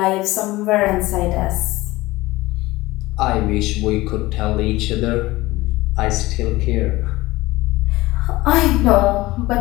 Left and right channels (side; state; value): right; quieter; 19.2 dB